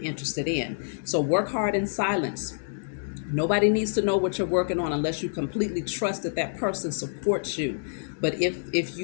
interested in. So work hard in silence. Nobody needs to know what you're working on unless you completely trust that that person supports you. But if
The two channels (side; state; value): right; silent; digital silence